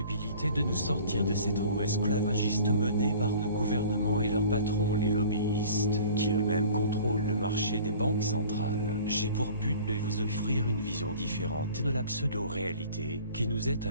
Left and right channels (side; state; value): both; inverted; correlation -0.46